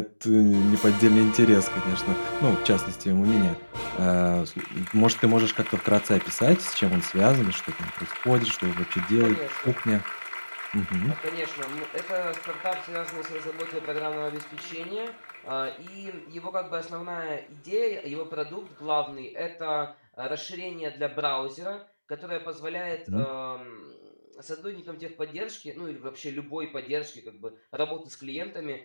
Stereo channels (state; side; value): inverted; both; correlation -1.00